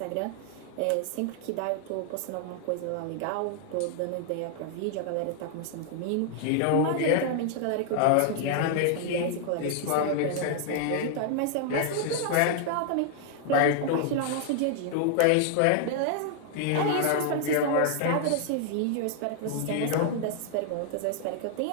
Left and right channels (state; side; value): different; both; correlation 0.00